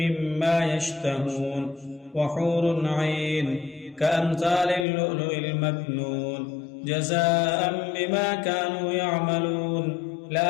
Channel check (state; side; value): drops out; right; at 4.9 s